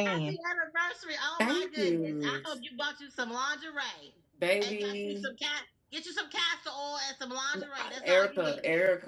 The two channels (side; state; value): both; identical; correlation 1.00